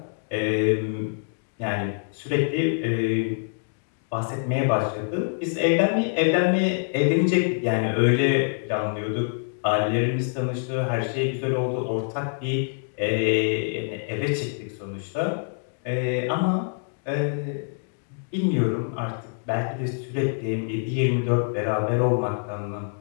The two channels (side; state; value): right; silent; digital silence